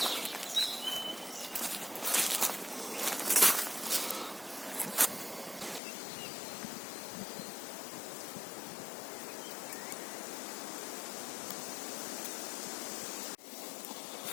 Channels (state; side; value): drops out; right; at 5.8 s